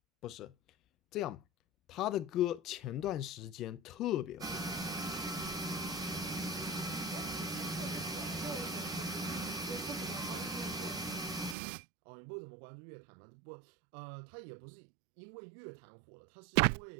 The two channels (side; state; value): left; drops out; at 11.6 s